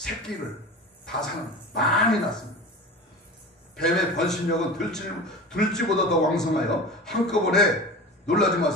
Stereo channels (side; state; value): both; normal; correlation 0.32